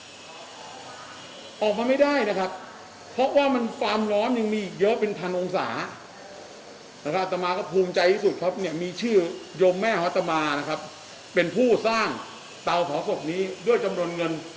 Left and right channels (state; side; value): identical; both; correlation 1.00